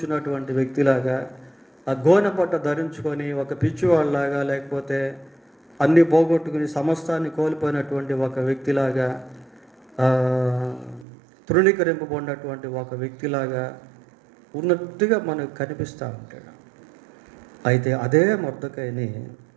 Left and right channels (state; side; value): drops out; left; at 11.1 s